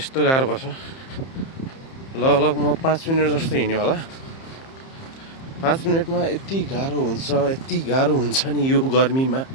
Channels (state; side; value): late; right; 30 ms